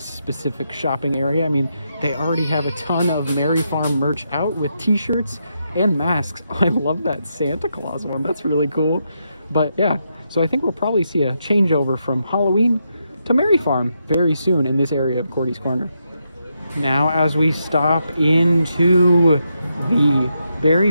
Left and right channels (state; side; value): inverted; both; correlation -0.82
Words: specific shopping area. I mean, they already have a ton of Merry Farm merch out with t-shirts and masks. I love that Santa Claus one, that's really cool. But yeah, so I think we'll probably see a changeover from Halloween to Merry Farm very soon in this area of Cordy's Corner. Now, as we stop into the